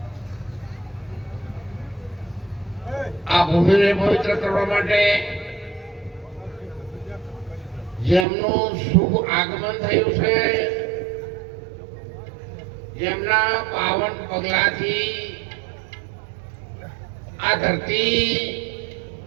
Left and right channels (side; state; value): left; drops out; at 8.2 s